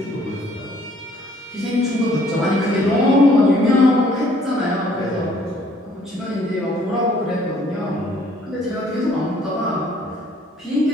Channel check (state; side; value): normal; both; correlation 0.60